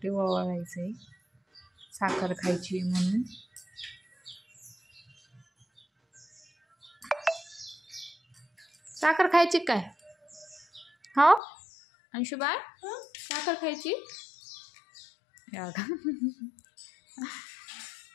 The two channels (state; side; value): drops out; right; at 11.4 s